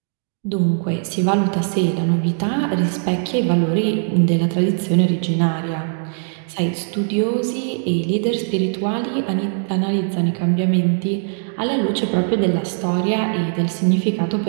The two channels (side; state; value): left; silent; digital silence